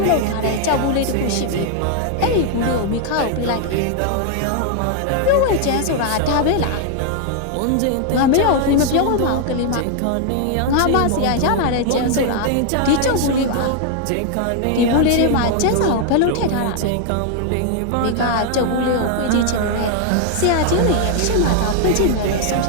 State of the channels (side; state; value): both; different; correlation 0.00